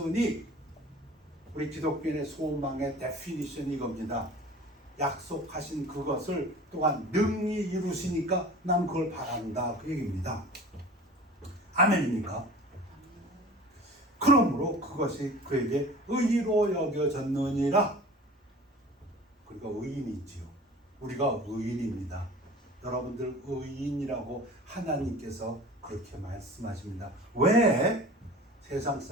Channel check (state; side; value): normal; both; correlation 0.41